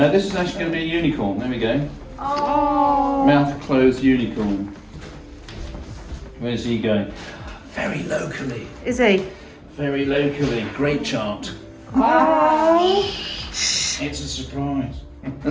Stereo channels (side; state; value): both; identical; correlation 1.00